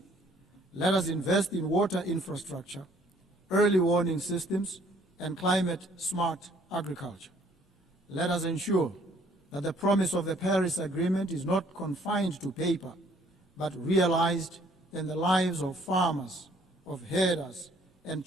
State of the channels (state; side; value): normal; both; correlation 0.61